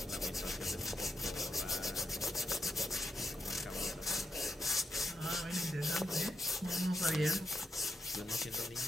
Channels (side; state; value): both; normal; correlation 0.84